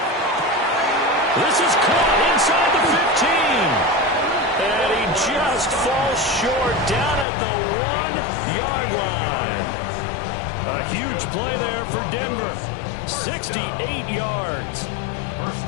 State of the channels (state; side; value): drops out; right; at 7.2 s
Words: This is caught inside the 15. And he just falls short down at the 1-yard line. A huge play there for Denver. 68 yards.